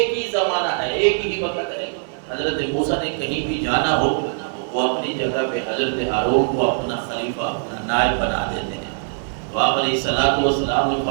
ہی زمانہ ہے، ایک ہی وقت ہے۔ حضرت موسیٰ نے کہیں بھی جانا ہو وہ اپنی جگہ پہ حضرت ہارون کو اپنا خلیفہ، اپنا نائب بنا دیتے ہیں۔ تو آپ علیہ السلام نے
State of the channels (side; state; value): left; silent; 64 dB below the other